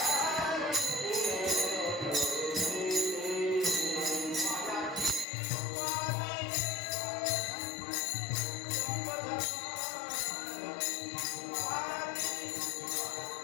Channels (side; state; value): right; drops out; at 5.2 s